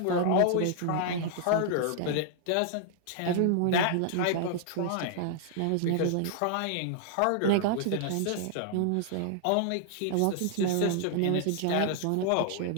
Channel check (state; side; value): different; both; correlation 0.00